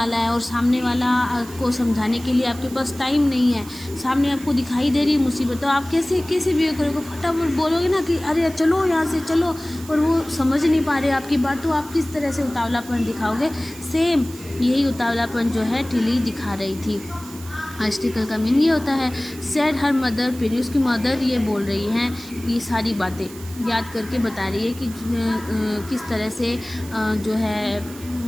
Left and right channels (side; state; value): right; noise; hiss, 18 dB below the sound